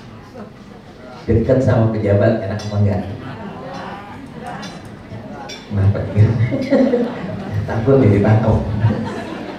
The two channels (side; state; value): both; identical; correlation 1.00